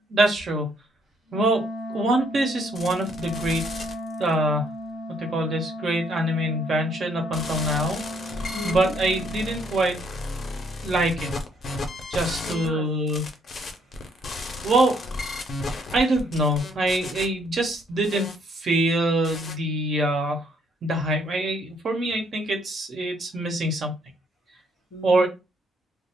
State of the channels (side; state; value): both; normal; correlation 0.68